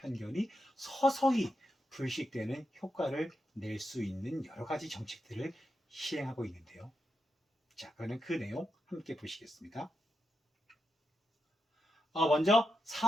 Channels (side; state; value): both; normal; correlation 0.86